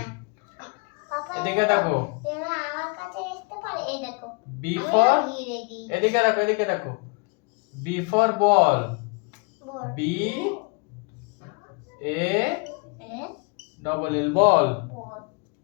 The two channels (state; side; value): quieter; right; 31.1 dB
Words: এদিকে দেখো, বি ফর, এদিকে দেখো, এদিকে দেখো, B for ball, B A double L, ball.